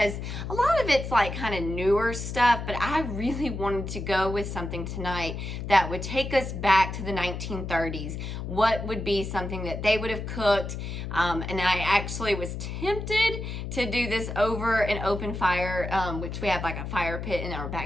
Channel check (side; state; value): left; noise; hum, 6 dB below the sound